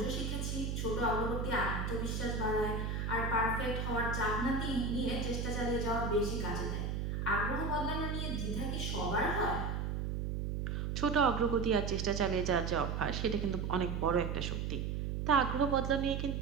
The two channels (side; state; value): right; noise; hum, 2 dB below the sound